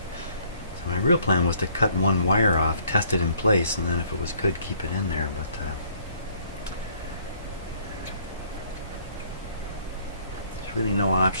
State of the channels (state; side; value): inverted; both; correlation -0.62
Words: So my real plan was to cut one wire off, test it in place, and then if it was good, keep it in there. But there's really no